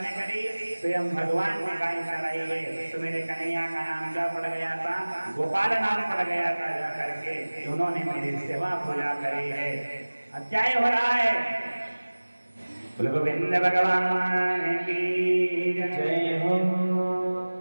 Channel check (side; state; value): both; inverted; correlation -1.00